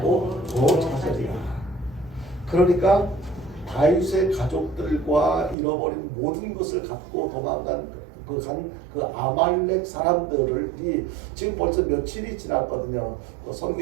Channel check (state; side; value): drops out; left; at 5.6 s